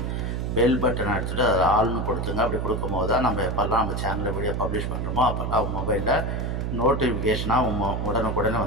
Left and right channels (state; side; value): noise; right; hum, 2 dB below the sound